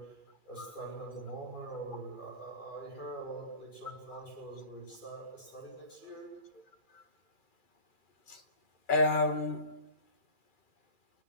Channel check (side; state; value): right; late; 2.4 ms